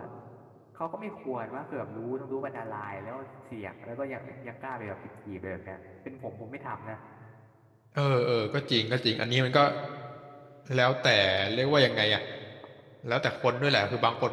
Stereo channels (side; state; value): both; identical; correlation 1.00